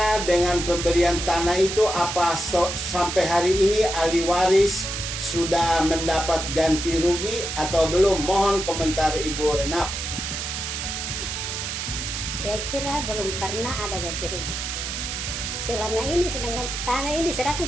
dengan pemberian tanah itu? Apa sampai hari ini ahli waris sudah mendapat ganti rugi atau belum? Mohon komentar Ibu Renap. Saya kira belum pernah ada ganti rugi. Selama ini sedangkan tanah ini diserahkan,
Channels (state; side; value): noise; right; hiss, 4 dB below the sound